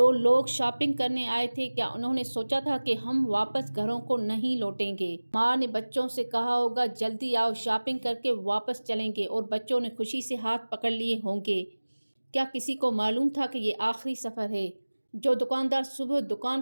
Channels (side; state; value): both; inverted; correlation -1.00